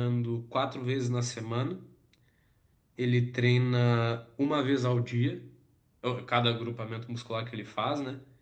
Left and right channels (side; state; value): both; identical; correlation 1.00